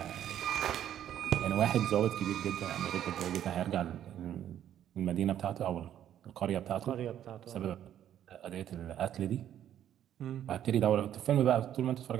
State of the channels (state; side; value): quieter; left; 10.8 dB